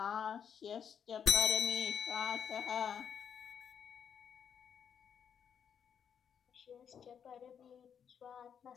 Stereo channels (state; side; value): quieter; right; 7.8 dB